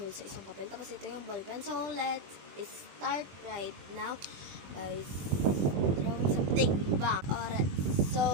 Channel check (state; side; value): late; left; 21 ms